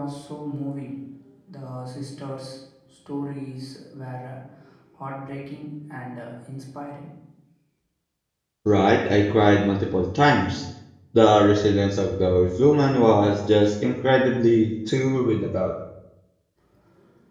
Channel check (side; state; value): both; identical; correlation 1.00